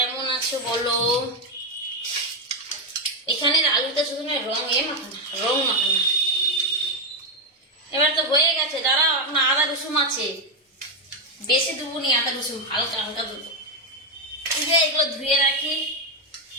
আছো বলো। এখানের আলুটা শুধু রং মাখানা, রং মাখানা। এবার তো হয়ে গেছে, দাঁড়াও এখন আদা রসুন আছে, বেশি দেবো নি আদা রসুন, হালকা হালকা দেবো। এগুলো ধুয়ে রাখি।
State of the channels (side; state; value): both; normal; correlation 0.05